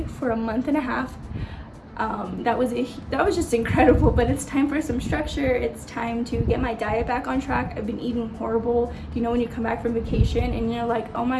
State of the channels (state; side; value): identical; both; correlation 1.00